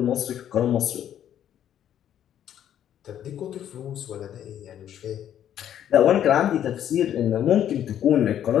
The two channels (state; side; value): quieter; right; 10.4 dB